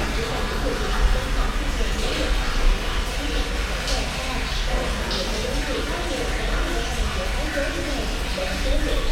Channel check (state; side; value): identical; both; correlation 1.00